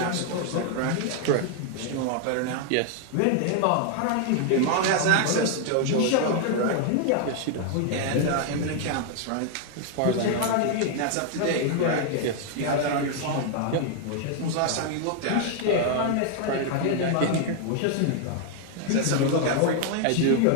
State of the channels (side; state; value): both; different; correlation 0.00